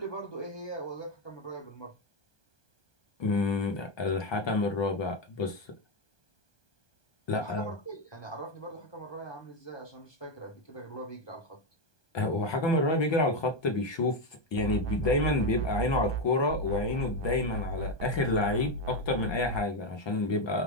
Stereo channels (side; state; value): right; late; 1.2 ms